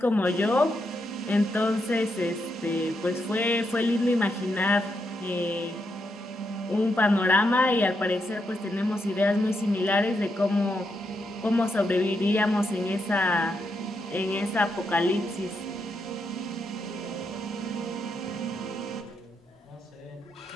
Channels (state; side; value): normal; both; correlation 0.82